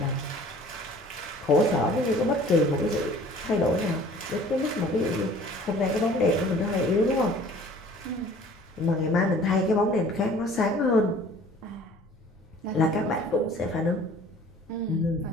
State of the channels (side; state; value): both; normal; correlation 0.50